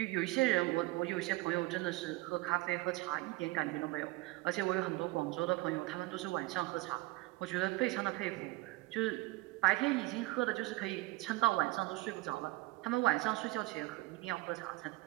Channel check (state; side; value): quieter; left; 20.5 dB